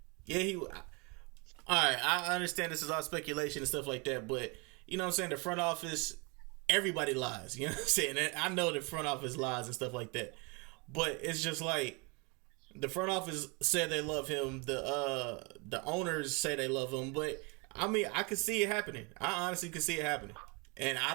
Yeah, all right, I understand this is all speculation and stuff like that, but you know what I'm saying? The front office, everybody lies. You know what I'm saying? And I know the front office lies and stuff like that, but it's just like, the front office said they love him. The owners say they love him, but I can see it happening. I honestly can see it happening, and I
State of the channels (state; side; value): quieter; left; 30.6 dB